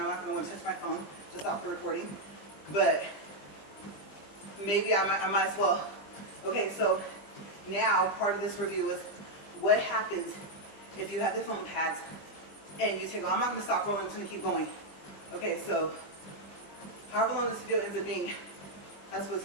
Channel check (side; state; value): right; late; 20 ms